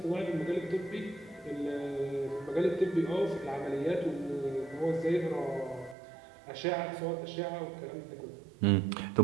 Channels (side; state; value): left; drops out; at 6.0 s